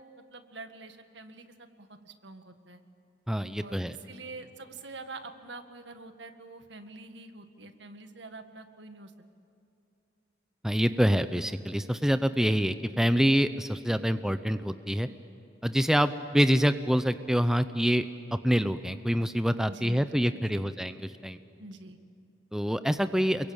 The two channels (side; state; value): both; normal; correlation 0.96